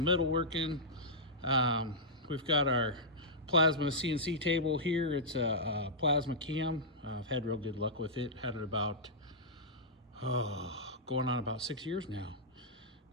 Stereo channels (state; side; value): normal; both; correlation -0.12